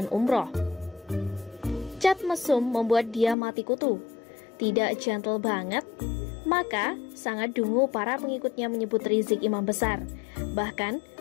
umroh. Cat mesum membuat dia mati kutu. Tidak gentle banget. Maka sangat dungu para pengikutnya menyebut Rizik imam besar.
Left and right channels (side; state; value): right; drops out; at 3.4 s